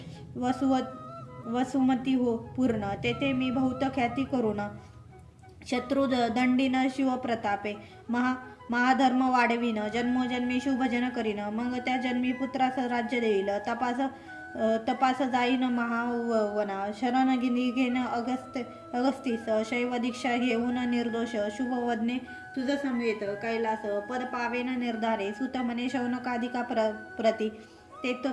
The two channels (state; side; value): identical; both; correlation 1.00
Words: वसुमती हो पूर्ण, तेथे मी बहुत ख्याती करून शत्रू दंडीन शिवप्रतापे महाधर्म वाढविन, जन्मोजन्मी शुभजन करीन, मग त्या जन्मी पुत्रास राज्य देईल, तपास जाईन महावना, शरण घेण अगस्तीस, शैव दीक्षा घेऊन निर्दोष, शुभवदने तुझ समवेत कैलास, पद पावेन निर्धारे, सुत म्हणे शौनकाधिका प्रती,